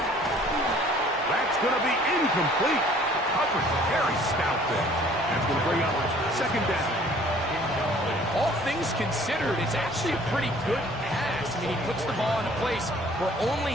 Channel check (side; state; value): right; noise; rumble, 22 dB below the sound